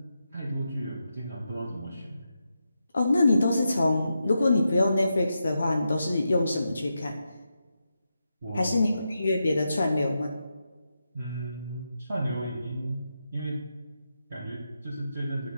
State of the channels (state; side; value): inverted; both; correlation -0.87